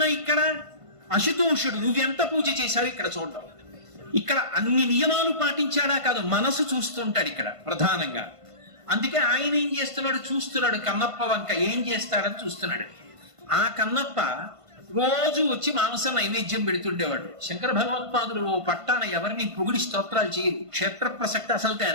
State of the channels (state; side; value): late; left; 1.5 ms